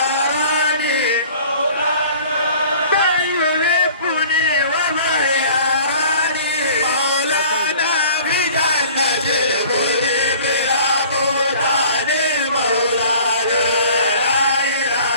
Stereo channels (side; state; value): both; inverted; correlation -0.48